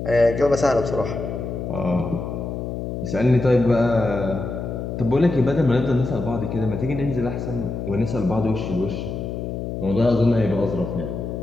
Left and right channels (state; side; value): noise; left; hum, 5 dB below the sound